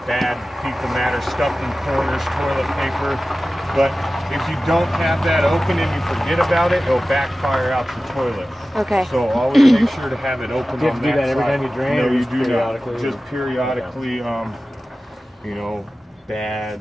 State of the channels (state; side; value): normal; both; correlation 0.95